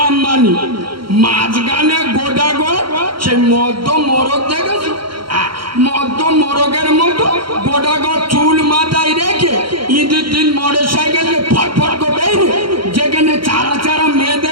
মাঝখানে গোটা গো সে মধ্য মোরগ দেখেছো, মধ্য মোরগের মতো গোটা গো চুল মাথায় রেখে ঈদের দিন মোটর সাইকেল ফটফট করে যেখানে চারা চারা মেয়ে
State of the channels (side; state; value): left; late; 0.73 ms